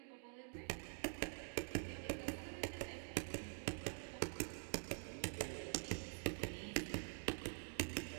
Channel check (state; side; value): silent; left; digital silence